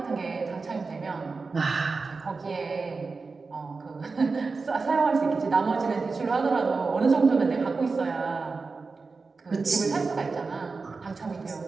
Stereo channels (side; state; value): left; quieter; 4.3 dB